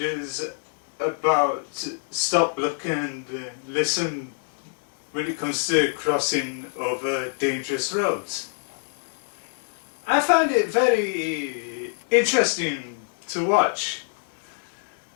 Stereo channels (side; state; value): right; silent; 61 dB below the other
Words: about stop, look and listen when it comes to crossing over dangerous roads. I found it very interesting to watch